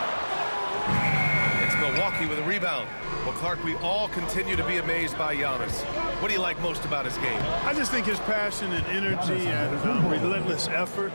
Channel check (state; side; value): inverted; both; correlation -1.00